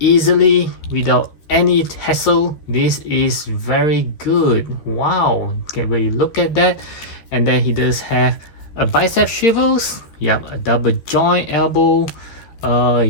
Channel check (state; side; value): late; right; 13 ms